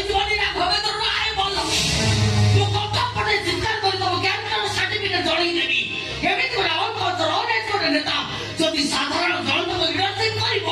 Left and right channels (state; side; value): identical; both; correlation 1.00